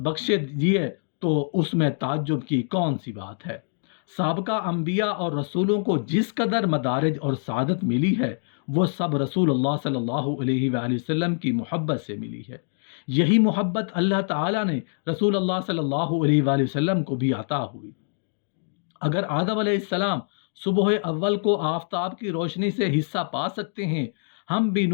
बख्शे दिए तो उसमें ताज्जुब की कौन सी बात है। साबका अंबिया और रसूलों को जिस कदर मदारिज और सादत मिली है, वो सब रसूलुल्लाह सल्लल्लाहु अलैहि वसल्लम की मोहब्बत से मिली है। यही मोहब्बत अल्लाह ताला ने रसूलुल्लाह सल्लल्लाहु अलैहि वसल्लम को भी अता हुई। अगर आदम अलैहिस्सलाम सुबह अव्वल को आफताब की रोशनी से हिस्सा पा सकते हैं, हम भी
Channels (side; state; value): right; silent; digital silence